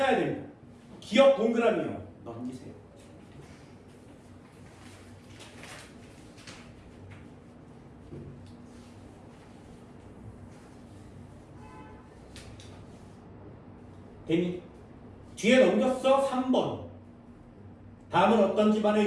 됩니다. 기억 동그라미요. 넘기세요. 됐니? 뒤에 넘겼어. 3번. 다음은 어떤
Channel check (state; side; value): identical; both; correlation 1.00